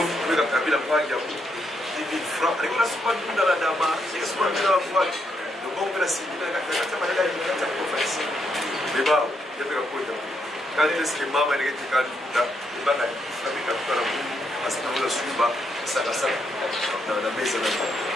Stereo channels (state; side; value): normal; both; correlation 0.78